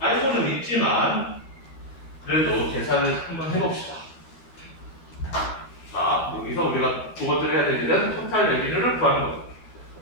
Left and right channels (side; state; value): right; late; 12 ms